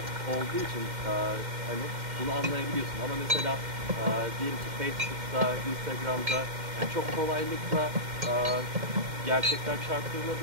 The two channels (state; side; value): late; left; 2.1 ms